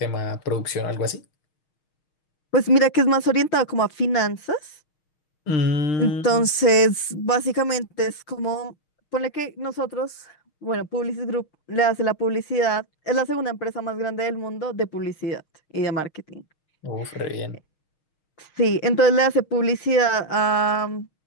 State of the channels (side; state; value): right; late; 6.4 ms